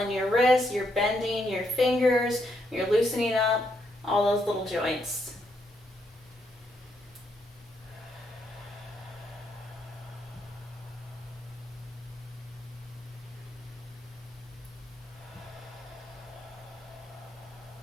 your wrists, you're bending your fingers, you're loosening up all those little joints.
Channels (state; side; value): normal; both; correlation 0.77